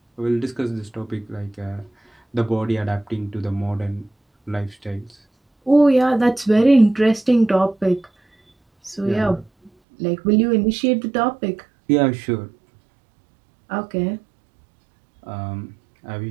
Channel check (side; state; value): left; drops out; at 9.7 s